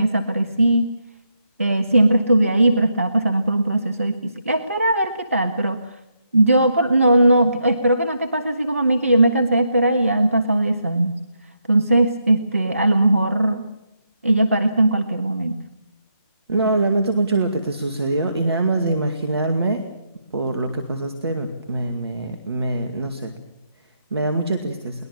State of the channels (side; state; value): both; inverted; correlation -0.80